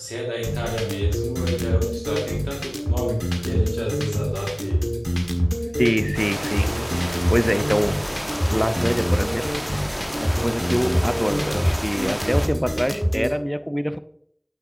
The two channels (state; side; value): identical; both; correlation 1.00